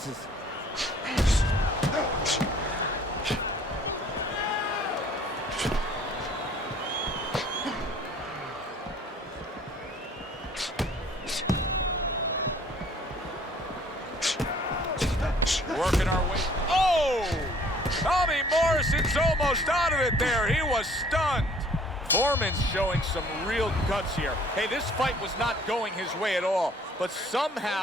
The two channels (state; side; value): normal; both; correlation 0.55